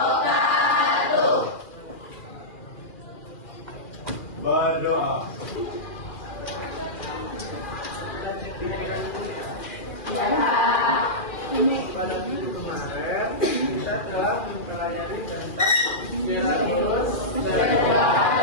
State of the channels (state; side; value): late; right; 2.4 ms